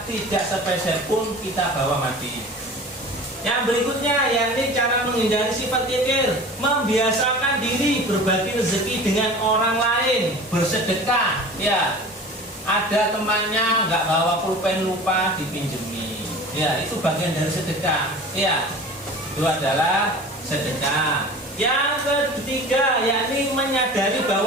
tidak sepeser pun kita bawa mati. Yang berikutnya yakni cara menghindari sifat kikir, membiasakan diri berbagi rezeki dengan orang lain, bersedekah. Ya, ada temannya nggak bawa pulpen, lupa dipinjemi. Ya, itu bagian dari sedekah. Ya, itu adalah sedekah. Yang ketiga yakni menyadari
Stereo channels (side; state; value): both; normal; correlation 0.39